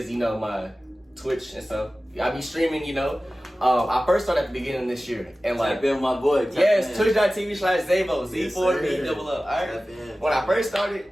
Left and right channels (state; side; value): normal; both; correlation 0.96